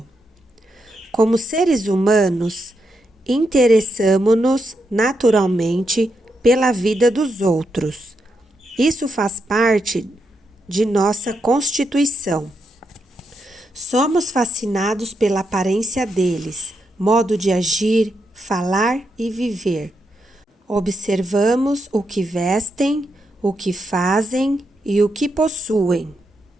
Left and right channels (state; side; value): normal; both; correlation 0.83